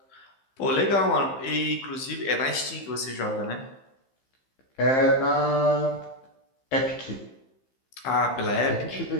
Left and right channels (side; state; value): right; late; 15 ms